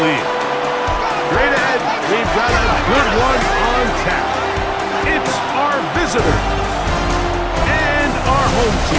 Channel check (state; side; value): identical; both; correlation 1.00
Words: League. Straight ahead, we've got a good one on tap. It's our visitors and our home